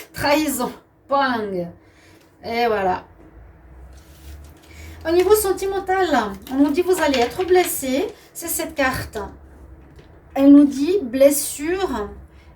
Trahison. Bang. Et voilà. Au niveau sentimental, on nous dit vous allez être blessé. C'est cette carte. Elle nous dit blessure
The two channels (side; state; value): both; identical; correlation 1.00